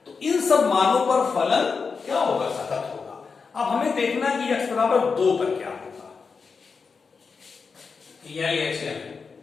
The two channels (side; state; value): right; quieter; 5.1 dB